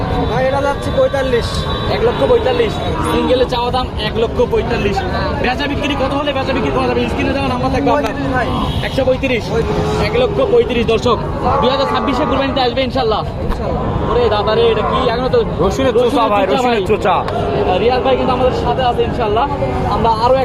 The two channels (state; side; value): identical; both; correlation 1.00